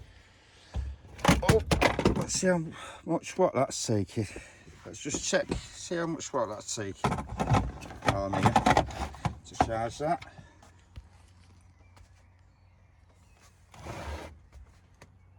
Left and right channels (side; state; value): both; identical; correlation 1.00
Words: Oh, let's see how much watt that's taking. Let's just check, see how much watt that's taking. Oh, I'm here to charge that.